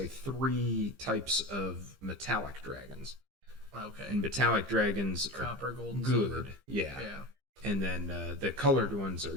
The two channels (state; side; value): late; left; 15 ms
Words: 3 types of metallic dragons. Okay. And metallic dragons are Copper, gold, and good, silver. yeah. Yeah. And then the colored ones are